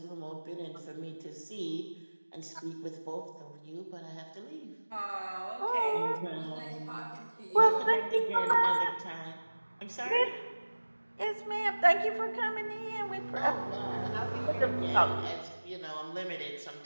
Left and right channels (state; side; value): inverted; both; correlation -1.00